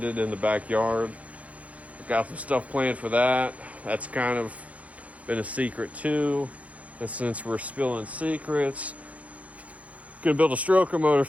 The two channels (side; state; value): left; late; 0.067 ms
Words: in the backyard. I've got some stuff planned for that. That's kind of been a secret too. And since we're spilling secrets, gonna build a stroker motor